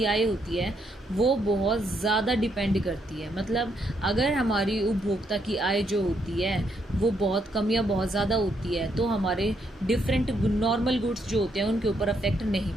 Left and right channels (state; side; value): normal; both; correlation 0.75